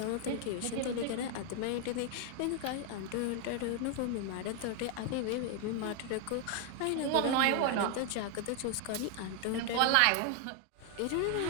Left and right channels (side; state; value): both; different; correlation 0.00